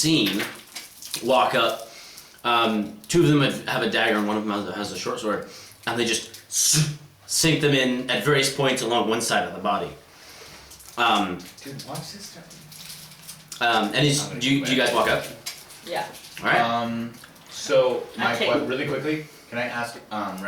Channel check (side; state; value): both; identical; correlation 1.00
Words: walk up. 2 of them have a dagger and one of them has a short sword, and they just sink them in at various points along one side of the body. Dude, watch this stuff. And do you guys walk up? Yeah. All right. So my Okay. really quickly, can I ask